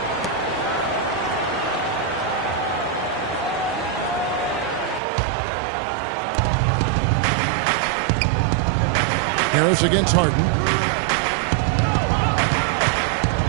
Harris against Harden.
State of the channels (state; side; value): drops out; left; at 5.0 s